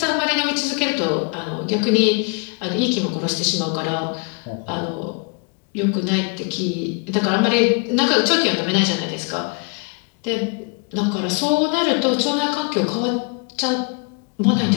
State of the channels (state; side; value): quieter; right; 32.9 dB